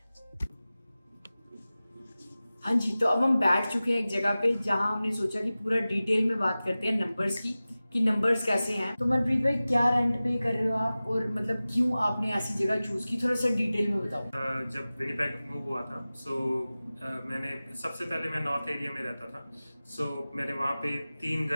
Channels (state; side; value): inverted; both; correlation -0.97